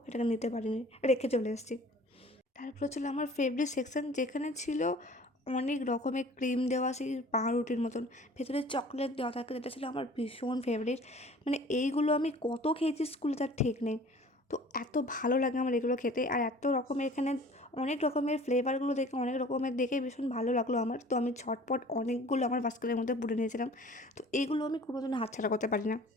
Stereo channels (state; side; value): normal; both; correlation 0.47